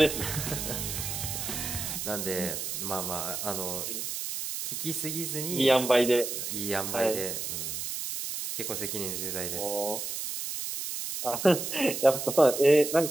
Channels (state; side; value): noise; right; hiss, 4 dB below the sound